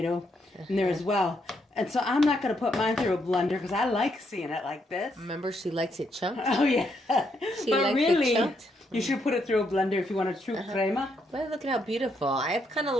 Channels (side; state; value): both; normal; correlation 0.77